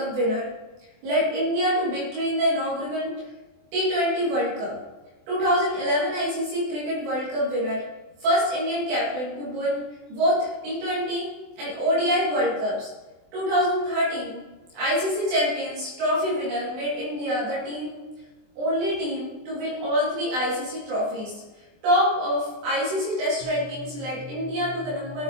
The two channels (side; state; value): left; late; 24 ms